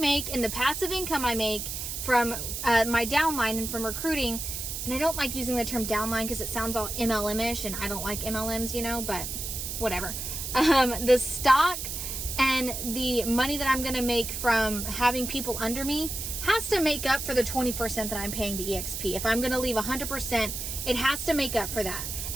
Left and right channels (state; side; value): noise; right; hiss, 5 dB below the sound